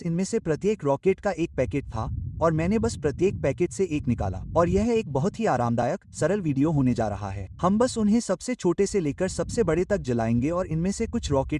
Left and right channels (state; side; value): identical; both; correlation 1.00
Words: इनमें से प्रत्येक रॉकेट का एक पैकेट था और मैंने बस प्रत्येक पैकेट से एक निकाला, और यह एक बहुत ही आरामदायक सरल वीडियो होने जा रहा है। हम बस उन्हें सबसे छोटे से लेकर सबसे बड़े तक जलाएंगे और इनमें से कुछ